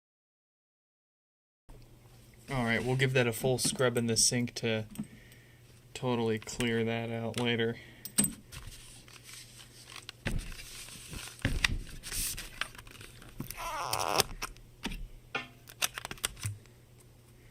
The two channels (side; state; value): both; identical; correlation 1.00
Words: Alright, we'll give that a full scrub in the sink to totally clear that out later.